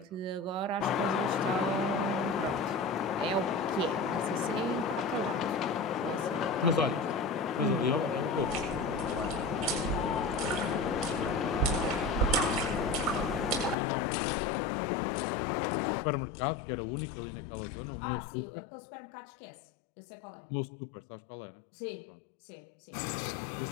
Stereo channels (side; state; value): right; drops out; at 13.8 s